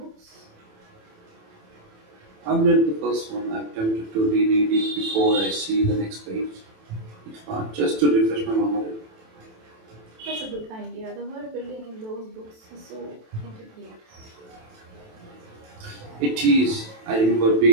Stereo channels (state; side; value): late; left; 27 ms